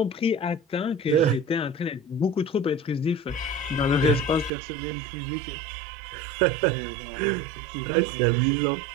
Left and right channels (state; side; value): drops out; left; at 4.5 s